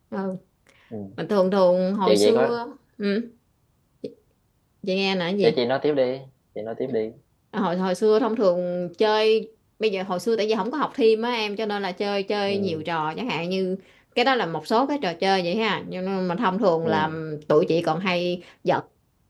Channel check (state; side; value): identical; both; correlation 1.00